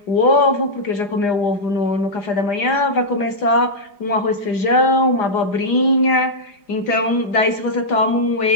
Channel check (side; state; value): right; late; 4.9 ms